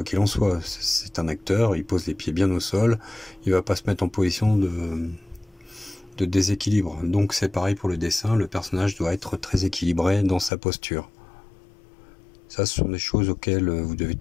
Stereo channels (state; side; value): drops out; right; at 10.5 s